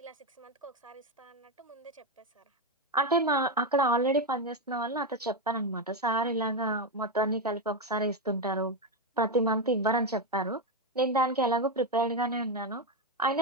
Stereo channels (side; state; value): both; normal; correlation 0.09